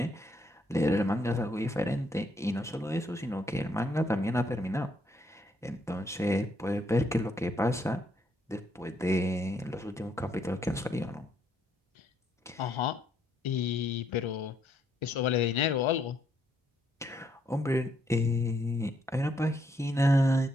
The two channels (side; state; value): both; normal; correlation 0.72